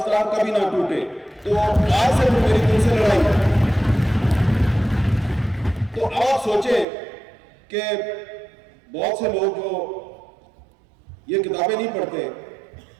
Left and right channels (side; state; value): left; drops out; at 6.9 s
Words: کبھی نہ ٹوٹے. تو آج سے میری دل سے لڑائی ہے. تو آپ سوچیں کہ بہت سے لوگ جو یہ کتابیں نہیں پڑھتے